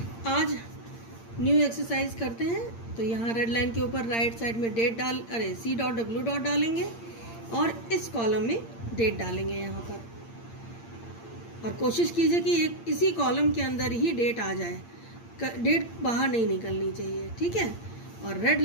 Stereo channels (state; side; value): late; right; 8.7 ms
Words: आज न्यू एक्सरसाइज करते हैं। तो यहाँ रेड लाइन के ऊपर राइट साइड में C.W. डालेंगे और इस कॉलम में डेट डालेंगे यहाँ पर, और कोशिश कीजिए कि इसी कॉलम के अंदर ही डेट आ जाए, डेट बाहर नहीं निकलनी चाहिए। ठीक है, और रेड